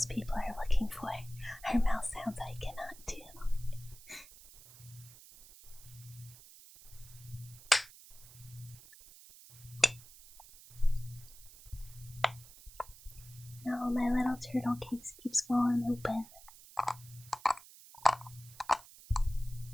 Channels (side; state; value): right; noise; hiss, 19 dB below the sound